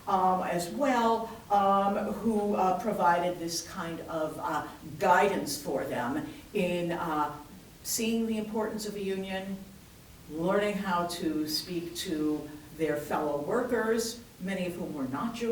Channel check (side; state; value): both; identical; correlation 1.00